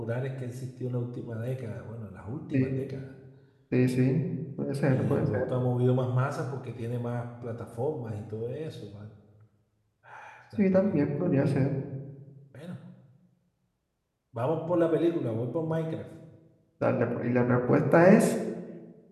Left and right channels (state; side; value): identical; both; correlation 1.00